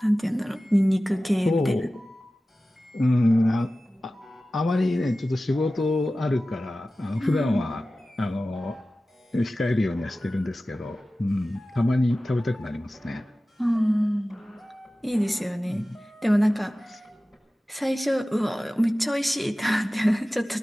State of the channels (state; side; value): normal; both; correlation 0.96